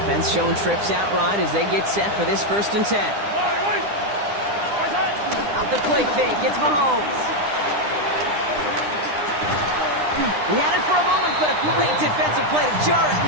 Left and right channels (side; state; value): left; late; 9.9 ms